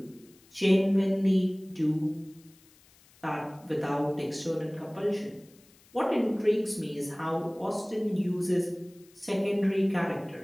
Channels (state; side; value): noise; left; hiss, 28 dB below the sound